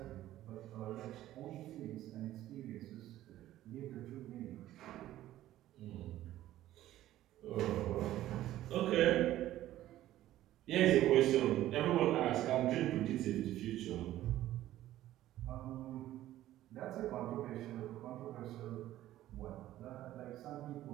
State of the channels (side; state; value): left; quieter; 14.0 dB